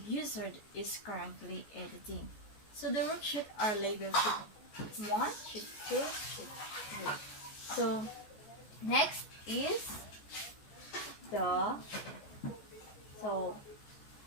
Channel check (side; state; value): right; late; 14 ms